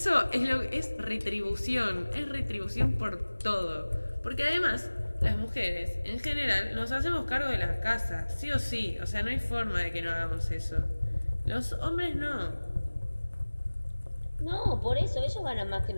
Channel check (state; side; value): inverted; both; correlation -1.00